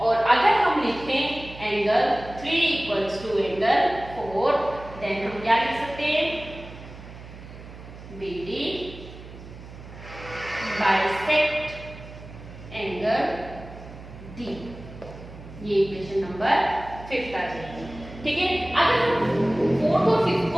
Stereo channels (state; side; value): noise; right; hum, 15 dB below the sound